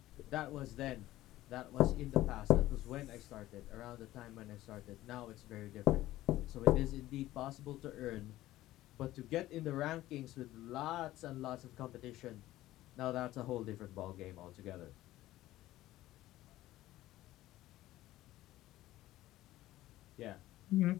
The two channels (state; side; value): quieter; right; 15.6 dB